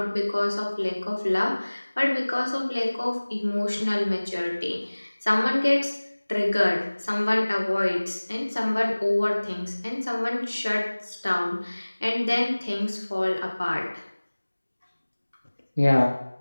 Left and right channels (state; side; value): inverted; both; correlation -1.00